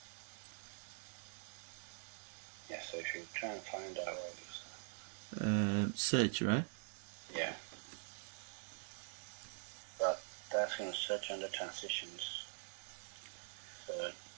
Yeah, so if you try and find out what it is. Search, right? Yeah. But that's going to search under transitions. So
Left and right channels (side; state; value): left; silent; digital silence